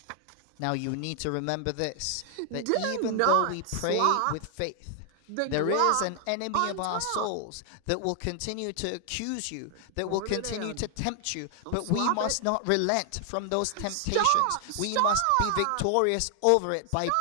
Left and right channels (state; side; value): different; both; correlation 0.00